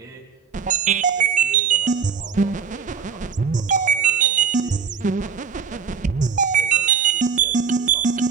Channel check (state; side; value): quieter; left; 6.4 dB